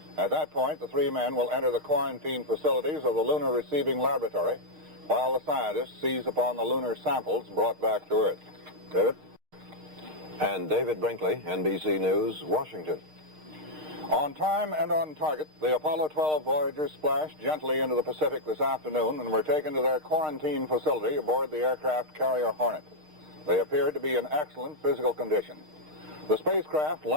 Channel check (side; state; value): left; late; 6.5 ms